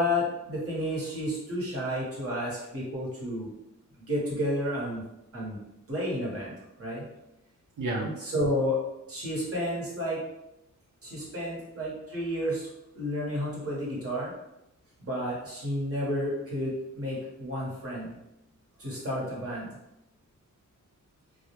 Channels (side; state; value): both; normal; correlation 0.37